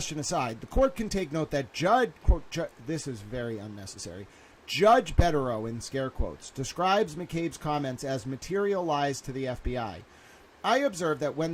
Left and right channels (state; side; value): identical; both; correlation 1.00